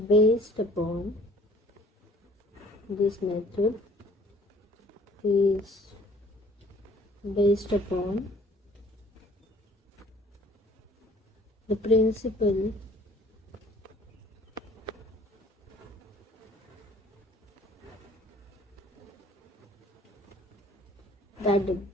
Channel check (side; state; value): both; normal; correlation 0.54